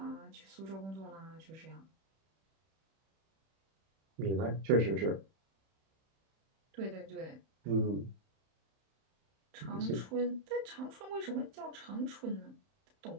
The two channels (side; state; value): left; late; 31 ms